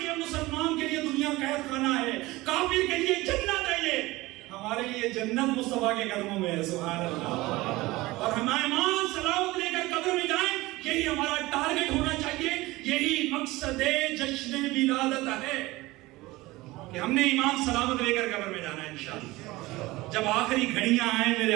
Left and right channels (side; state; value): left; quieter; 19.9 dB